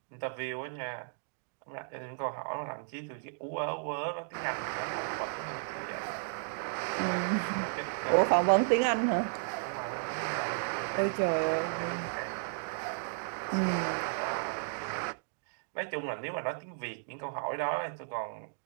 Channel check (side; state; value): left; silent; digital silence